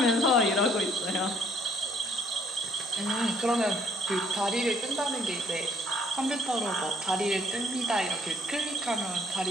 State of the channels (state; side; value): normal; both; correlation 0.64